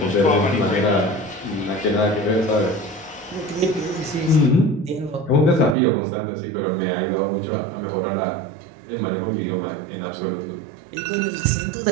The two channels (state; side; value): drops out; left; at 5.8 s